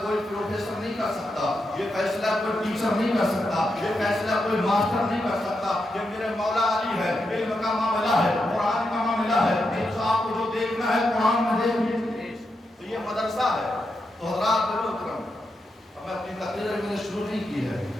کوئی پروفیسر نہیں کر سکتا، یہ فیصلہ کوئی ٹیچر نہیں کر سکتا، یہ فیصلہ کوئی ماسٹر نہیں کر سکتا، یہ میرے مولا علی ہے، علم کا معاملہ ہے، قرآن کا معاملہ ہے، ایک صاحب کو جو دیکھنا ہے قرآن میں دیکھیے، تو یہ مدرسہ ہے۔ تو حضرات محترم اب میں اپنی تقریر میں نے شروع نہیں کی ہے،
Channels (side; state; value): both; normal; correlation 0.85